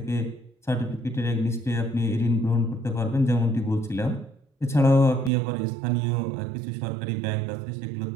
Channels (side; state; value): left; drops out; at 5.3 s